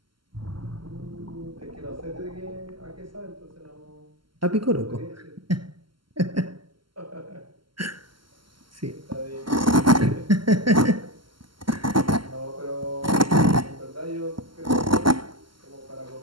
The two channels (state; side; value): late; left; 0.73 ms